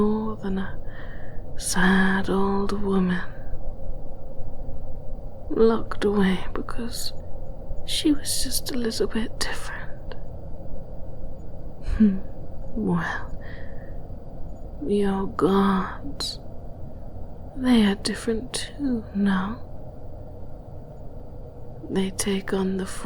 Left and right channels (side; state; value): both; identical; correlation 1.00